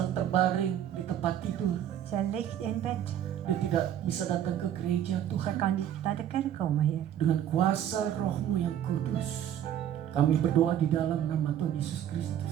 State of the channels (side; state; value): left; quieter; 10.5 dB